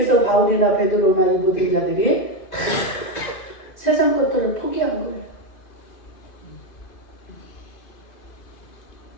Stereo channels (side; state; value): right; late; 2.5 ms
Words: 바울이나 베드로나 이 모든 자들이 다 세상 것들을 포기한 거예요.